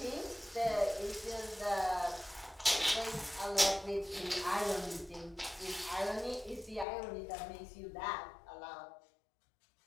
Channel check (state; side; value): drops out; right; at 6.9 s